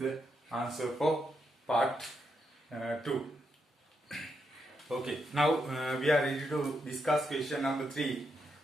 answer for part 2. Okay, now we are ready to discuss question number 3.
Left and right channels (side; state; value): both; normal; correlation 0.82